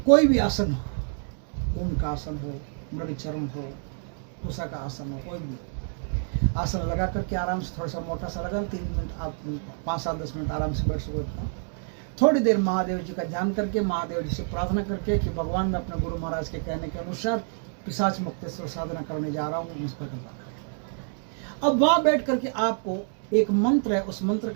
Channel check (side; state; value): left; silent; 60 dB below the other